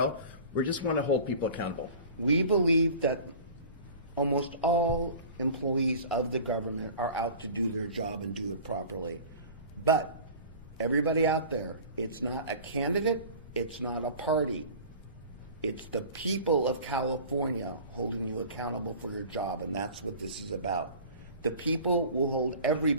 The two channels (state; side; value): inverted; both; correlation -0.41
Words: We just want to hold people accountable. We believe that almost all employees of the government are out to do their job and do it properly. But everybody out there, it's not a candidate, it's not a party. It's the people of California holding you accountable for your job, and that's what this is about. The people will hold